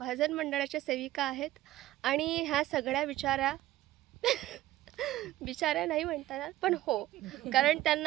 मंडळाच्या सेविका आहेत आणि ह्या सगळ्या बिचाऱ्या नाही म्हणतात पण हो, कारण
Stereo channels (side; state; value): left; quieter; 15.3 dB